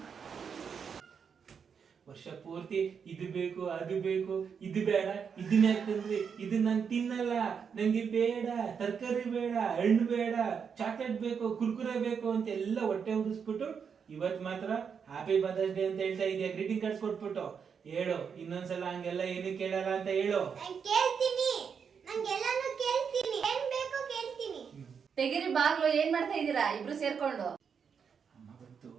ವರ್ಷ ಪೂರ್ತಿ ಇದು ಬೇಕು ಅದು ಬೇಕು ಇದು ಬೇಡ ಇದನ್ನ ಯಾಕಂದ್ರೆ ಇದು ನಾನು ತಿನ್ನಲ್ಲ, ನಂಗೆ ಬೇಡ, ತರಕಾರಿ ಬೇಡ, ಹಣ್ಣು ಬೇಡ, ಚಾಕ್ಲೇಟ್ ಬೇಕು, ಕುರ್ಕುರೆ ಬೇಕು ಅಂತ ಎಲ್ಲ ಹೊಟ್ಟೆ ಉರಿಸ್ಬಿಟ್ಟು ಇವತ್ ಮಾತ್ರ ಹ್ಯಾಪಿ ಮದರ್ಸ್ ಡೇ ಅಂತ ಹೇಳ್ತಾ ಇದೆಯಾ. ಗ್ರೀಟಿಂಗ್ ಕಾರ್ಡ್ಸ್ ಕೊಟ್ಬಿಟ್ಟು ಹೇಳು, ಇನ್ನೊಂದ್ಸಲ ಹಂಗೆಲ್ಲ ಏನು ಕೇಳಲ್ಲ ಅಂತ ಹೇಳು. ತೆಗಿರಿ ಬಾಗ್ಲು. ಏನ್ ಮಾಡ್ತಾ ಇದೀರಾ ಇಬ್ರು ಸೇರ್ಕೊಂಡು? ಅಮ್ಮ ಗೊತ್ತು,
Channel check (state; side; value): quieter; left; 6.6 dB